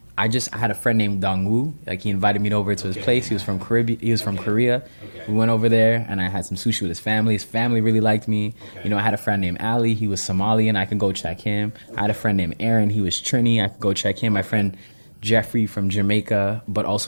I had a friend named Dongwoo. He invited me over to his place. He was from Korea. Okay. We went over there and I had some sushi with his family. His family really liked me. Okay. I had a friend named Ali. He was Somalian. I could go check him. I had a friend named Aaron. He was Trini. I could go check him. My friend Jeffrey from Jamaica, but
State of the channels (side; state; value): both; inverted; correlation -1.00